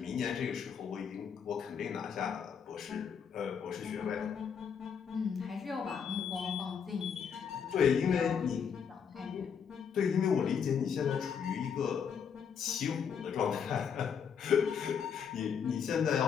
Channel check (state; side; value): quieter; right; 7.1 dB